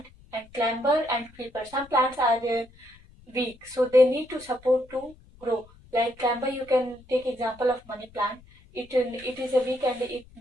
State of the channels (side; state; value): left; noise; rumble, 25 dB below the sound